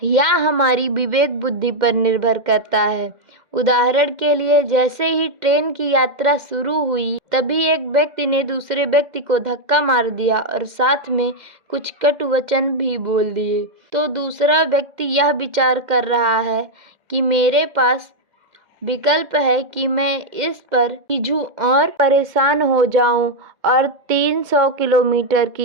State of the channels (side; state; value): left; late; 2.1 ms